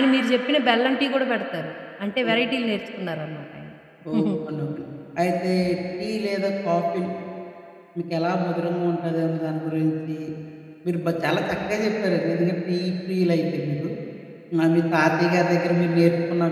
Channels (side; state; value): both; identical; correlation 1.00